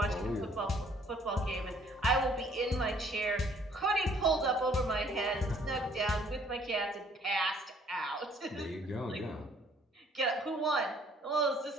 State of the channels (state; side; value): normal; both; correlation 0.60